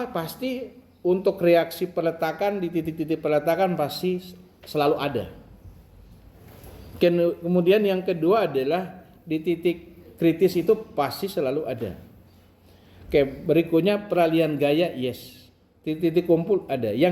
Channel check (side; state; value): both; identical; correlation 1.00